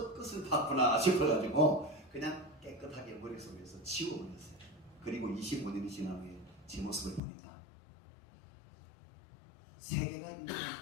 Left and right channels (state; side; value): drops out; right; at 7.2 s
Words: 봤구나 싶어가지고 그냥 깨끗하게 머릿속에서 지워버렸어요. 그리고 25년이 지난 후에 제 모습을 보니까 세계가